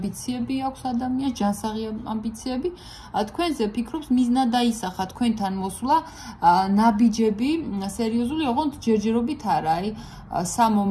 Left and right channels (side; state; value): both; identical; correlation 1.00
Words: აქვს ადამიანს, ჯანსაღი ამბიციები. თქვენზე ფიქრობს მიზნად დაისახა თქვენთან მოსვლა, ნაბიჯები, სერიოზული, ოღონდ ჯერჯერობით არა, აი